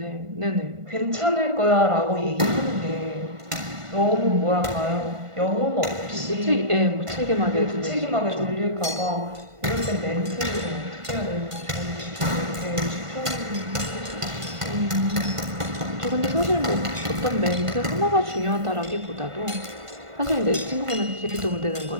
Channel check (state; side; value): late; left; 1.5 ms